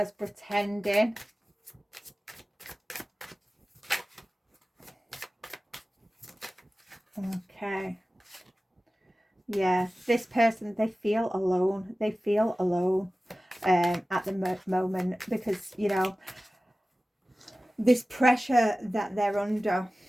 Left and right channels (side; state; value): both; normal; correlation 0.96